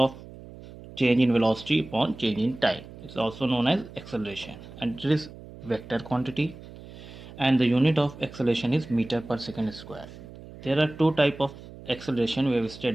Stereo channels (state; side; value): noise; right; hum, 16 dB below the sound